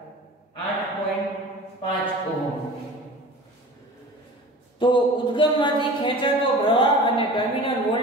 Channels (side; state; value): both; normal; correlation 0.38